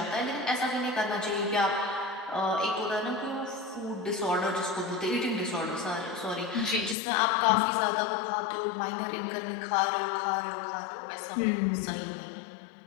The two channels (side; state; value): right; drops out; at 7.0 s